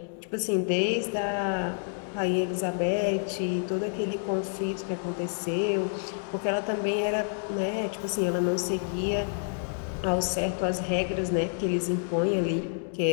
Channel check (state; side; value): silent; right; digital silence